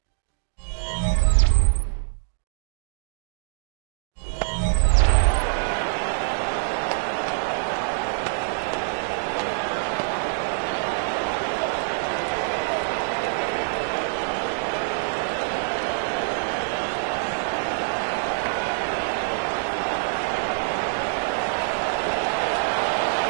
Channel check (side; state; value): left; silent; digital silence